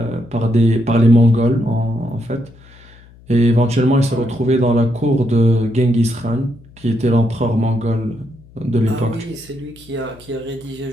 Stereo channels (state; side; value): noise; left; hum, 24 dB below the sound